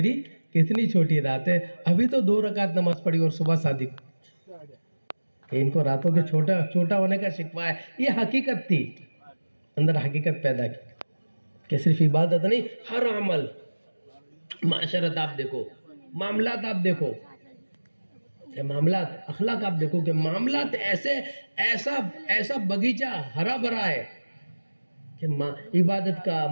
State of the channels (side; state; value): both; inverted; correlation -1.00